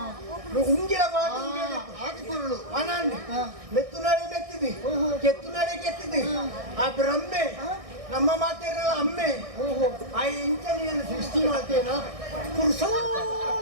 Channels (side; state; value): left; late; 1.6 ms